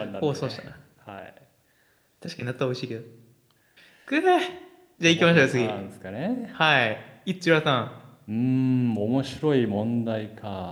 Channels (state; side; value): identical; both; correlation 1.00